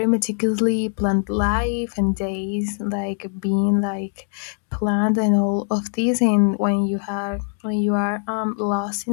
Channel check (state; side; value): silent; right; 61 dB below the other